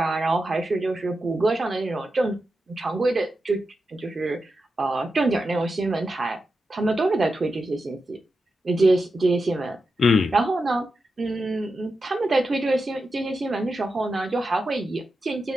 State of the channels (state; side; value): normal; both; correlation 0.89